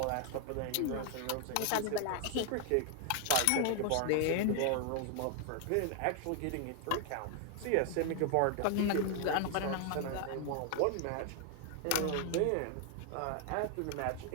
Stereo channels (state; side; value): different; both; correlation 0.00